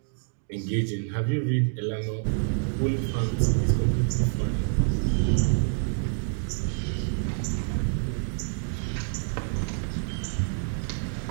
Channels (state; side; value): silent; left; digital silence